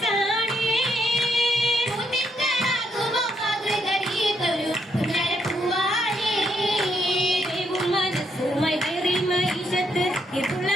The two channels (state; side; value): normal; both; correlation 0.76